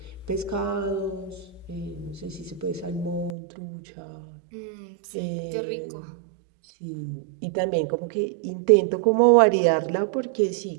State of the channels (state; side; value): drops out; left; at 3.4 s